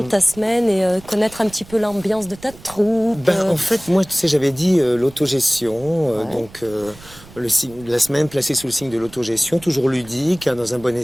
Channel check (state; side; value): noise; right; rumble, 21 dB below the sound